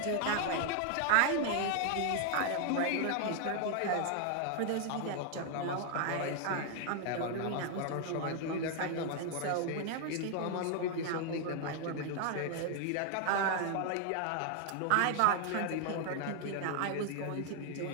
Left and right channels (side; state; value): both; different; correlation 0.00